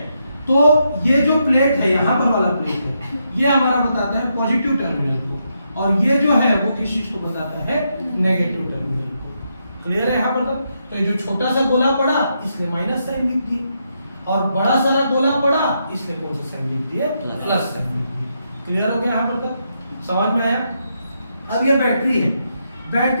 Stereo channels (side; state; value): both; inverted; correlation -0.81